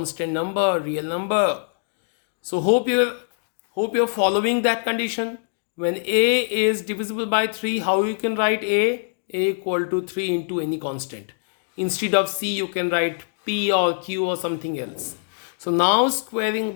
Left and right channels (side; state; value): right; silent; digital silence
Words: number, real number. So hope you're following that condition. When a is divisible by 3, how you can write a equal to 3 into any constant. Instead of c, you can write p or q or something else. So now squaring